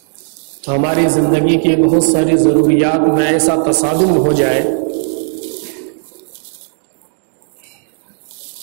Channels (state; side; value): silent; left; 63 dB below the other